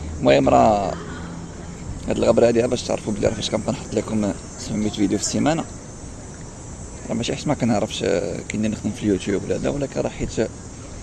المهم راه هاد الغبرة هادي باش تعرفوا بلي راه فاش كنبقى نحط لكم 700 فيديو في السيمانة، راه ماشي حيت ما كنعرفش كاين نخدم في اليوتيوب ولا لا، ولكن راه حيت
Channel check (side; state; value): both; identical; correlation 1.00